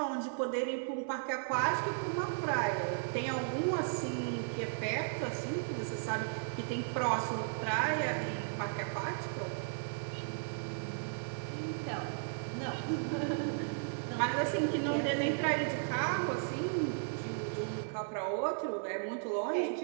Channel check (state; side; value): silent; left; 54 dB below the other